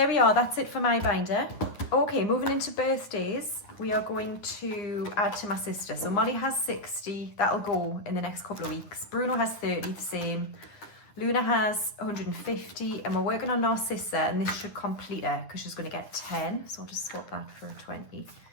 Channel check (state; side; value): late; right; 9.8 ms